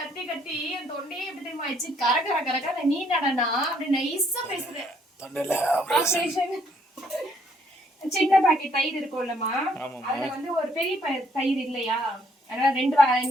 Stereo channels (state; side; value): normal; both; correlation 0.68